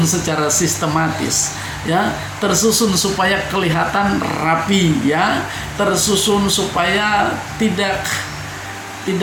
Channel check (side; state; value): both; identical; correlation 1.00